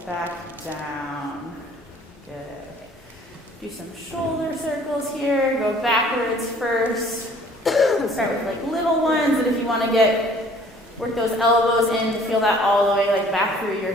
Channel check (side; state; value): both; normal; correlation 0.55